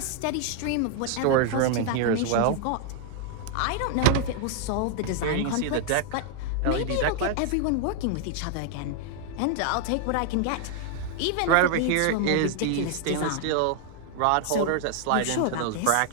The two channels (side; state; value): both; different; correlation 0.00